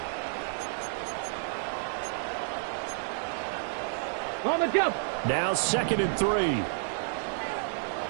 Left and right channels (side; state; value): left; silent; digital silence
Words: On the jump. Now 2nd and 3.